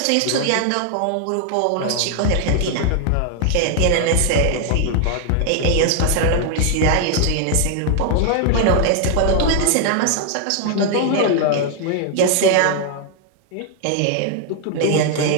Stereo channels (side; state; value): both; different; correlation 0.00